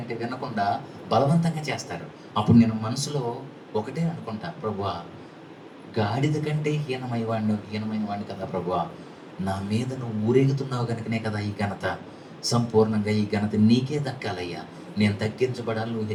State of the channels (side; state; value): both; identical; correlation 1.00